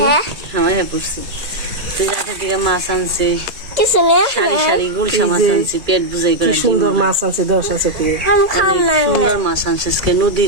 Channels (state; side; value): late; left; 2.3 ms